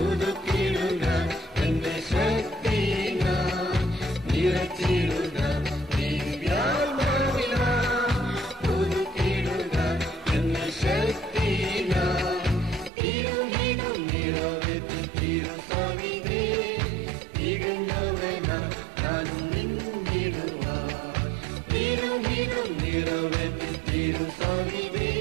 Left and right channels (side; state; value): left; drops out; at 12.9 s